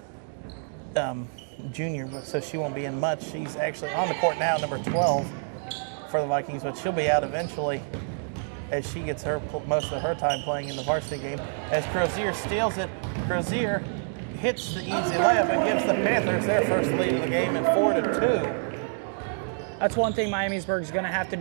junior, so she won't be in much. She's actually on the court now, number 12 for the Vikings, but she'll be out eventually as she gets most of her time playing in the varsity game. As Crozier steals it, Crozier hits the easy layup and gives the Panthers their first lead of the game at 4-2. That's one thing Miamisburg's going to have to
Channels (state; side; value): silent; left; digital silence